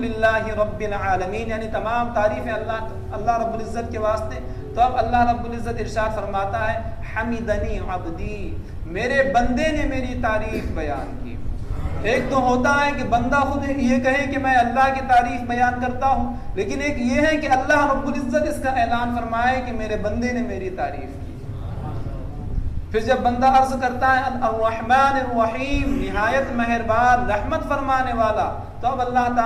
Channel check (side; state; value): both; identical; correlation 1.00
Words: رب العالمین، یعنی تمام تعریفیں اللہ رب العزت کے واسطے، تو اب اللہ رب العزت ارشاد فرماتا ہے حمدنی عبدی، میرے بندے نے میری تعریف بیان کی. ایک تو ہوتا ہے کہ بندہ خود یہ کہے کہ میں اللہ کی تعریف بیان کرتا ہوں، لیکن ایک یہ ہے کہ اللہ رب العزت اس کا اعلان فرمائے کہ میرے بندے نے میری تعریف کی. پھر جب بندہ عرض کرتا ہے الرحمن الرحیم، نہایت مہربان رحمت فرمانے والا، تو اب اللہ